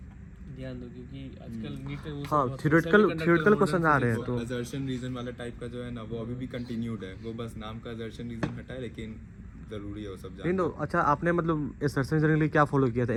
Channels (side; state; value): both; identical; correlation 1.00